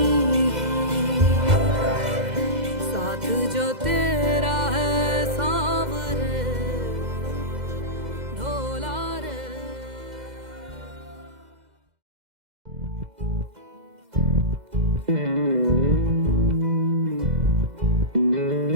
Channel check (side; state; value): left; late; 2.0 ms